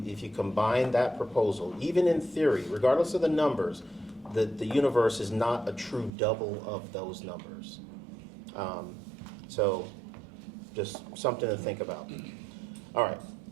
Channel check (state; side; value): drops out; left; at 6.1 s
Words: combine that proposal, even in theory, regardless of the numbers, the universe is not a true double of those numbers. So just something to think about. All right.